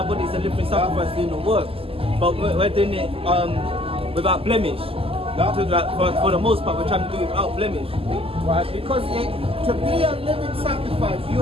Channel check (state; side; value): late; left; 0.27 ms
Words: bodies a living sacrifice doing the work. But we're doing it without blemish. For the most part, we're trying to do it without blemish. Right, because to be a living sacrifice,